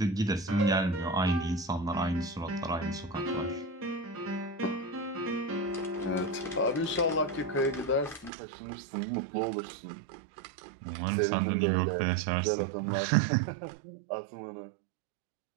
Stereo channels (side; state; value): left; drops out; at 8.3 s